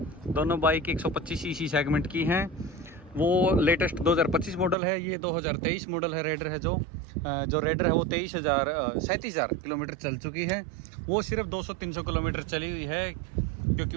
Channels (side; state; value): left; drops out; at 4.8 s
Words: दोनों बाइक 125 सीसी सेगमेंट की हैं। वो लेटेस्ट 2025 मॉडल है, ये 2023 मॉडल है। रेडर है जो रेडर है वो 37,000 किलोमीटर चल चुकी है। वो सिर्फ 200-300 किलोमीटर चली हुई है क्योंकि